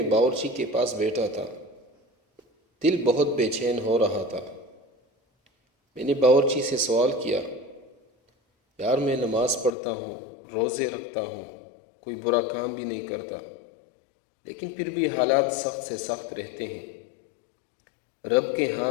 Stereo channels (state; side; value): drops out; right; at 9.7 s